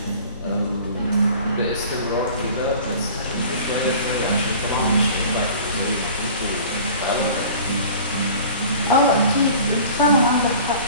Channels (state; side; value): inverted; both; correlation -0.44